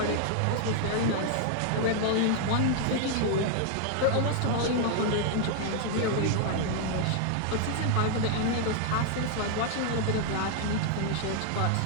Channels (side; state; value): both; different; correlation 0.00